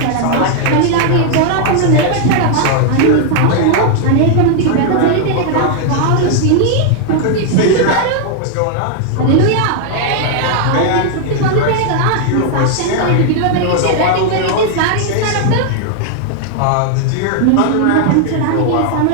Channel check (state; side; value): different; both; correlation 0.00